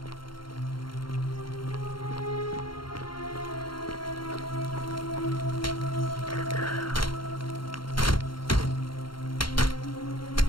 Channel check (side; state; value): right; late; 0.73 ms